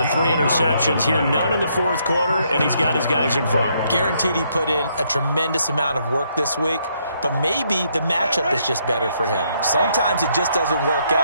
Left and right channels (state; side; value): inverted; both; correlation -0.73